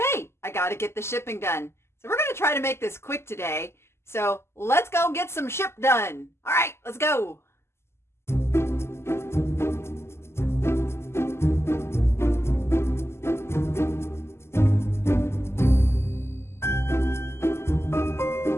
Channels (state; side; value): late; right; 0.12 ms